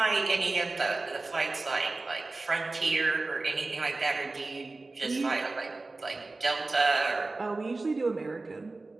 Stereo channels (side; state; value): left; quieter; 3.4 dB